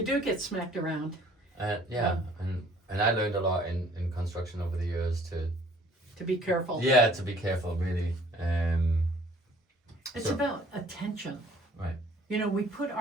do get smacked around. And I learned a lot in construction over the years to be careful. Yeah, to be careful, really. It's about attention. Right. You know, we put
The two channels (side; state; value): both; normal; correlation 0.56